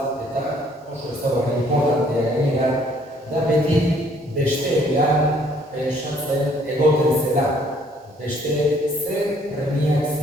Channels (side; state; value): both; normal; correlation 0.62